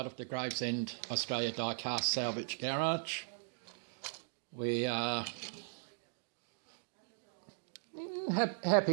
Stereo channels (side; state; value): left; silent; digital silence